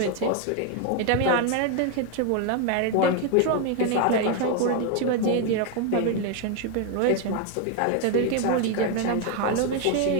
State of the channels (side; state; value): both; different; correlation 0.01